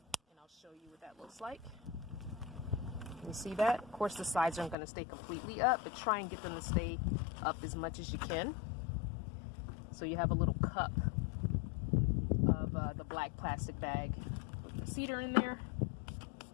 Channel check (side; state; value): right; drops out; at 4.8 s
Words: I'll show you what that looks like. You see that? Of course, the sides aren't going to stay completely up, but try and get them to stay up as much as you can. So you have a little cup of the black plastic bag with the cedar in there.